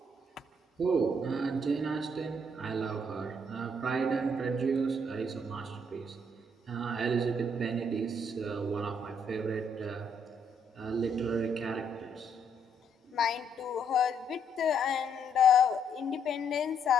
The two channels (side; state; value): both; normal; correlation 0.71